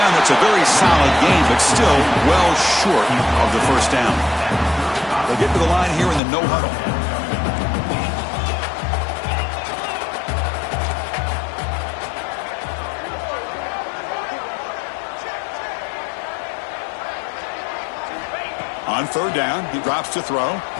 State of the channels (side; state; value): right; drops out; at 6.2 s